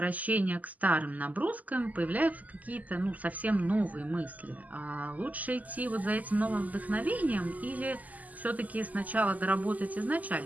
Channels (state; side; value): late; left; 0.078 ms